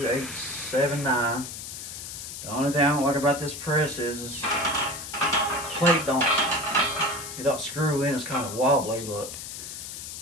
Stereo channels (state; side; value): noise; left; hiss, 9 dB below the sound